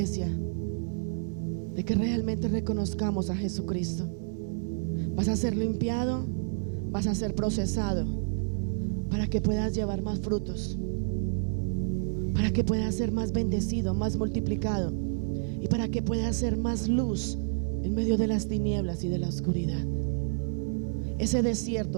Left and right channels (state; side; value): silent; left; digital silence